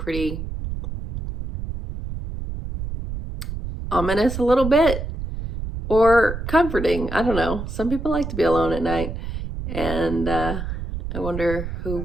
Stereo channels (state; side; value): noise; right; rumble, 6 dB below the sound